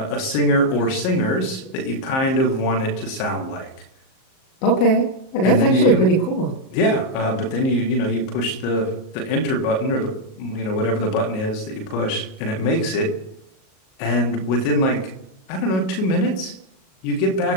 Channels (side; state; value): right; late; 38 ms